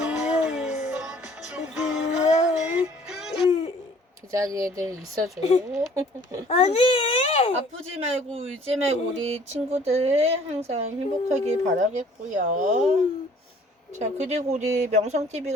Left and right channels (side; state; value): both; normal; correlation 0.55